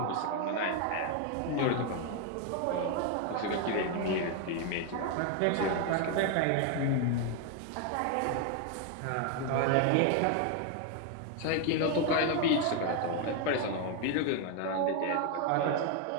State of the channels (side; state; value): both; different; correlation 0.01